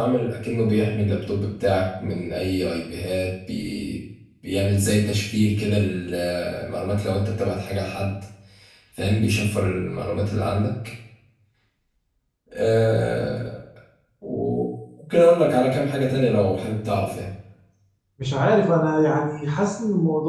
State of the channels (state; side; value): identical; both; correlation 1.00